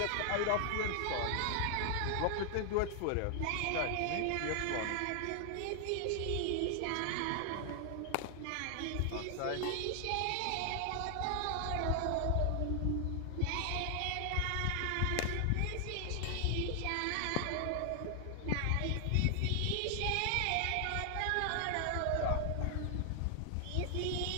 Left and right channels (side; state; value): both; different; correlation 0.00